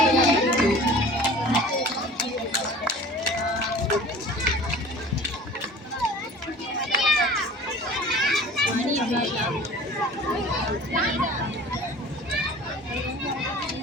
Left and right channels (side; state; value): both; normal; correlation 0.43